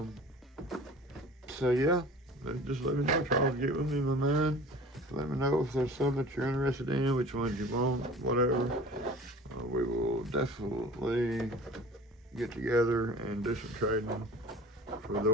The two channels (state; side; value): normal; both; correlation 0.42